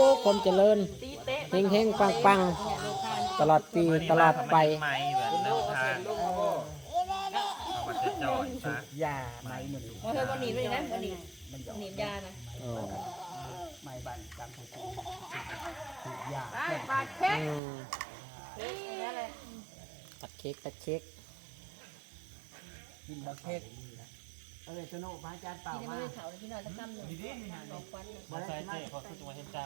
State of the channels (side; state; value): left; drops out; at 17.6 s